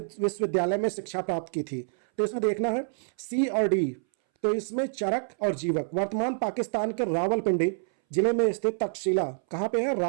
में शिक्षा प्राप्त की थी? तो इसमें देखना है सी और डी। तो इसमें चरक और जीवक। वर्तमान पाकिस्तान के रावलपिंडी जिले में स्थित तक्षशिला, कहाँ पे है?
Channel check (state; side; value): silent; left; 60 dB below the other